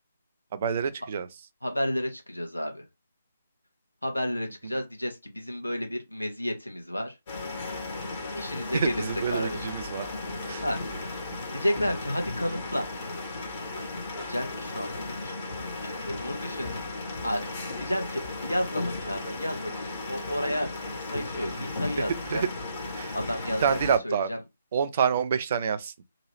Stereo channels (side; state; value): both; inverted; correlation -0.79